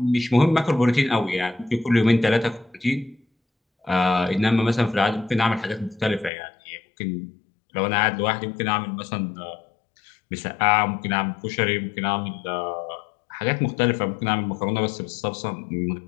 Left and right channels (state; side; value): drops out; right; at 6.3 s